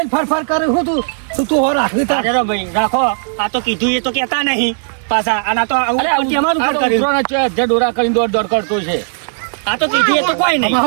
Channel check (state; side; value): silent; left; digital silence